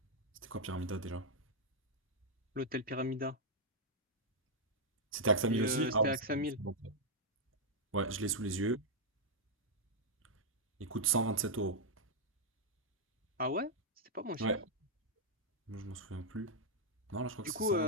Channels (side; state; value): both; normal; correlation -0.05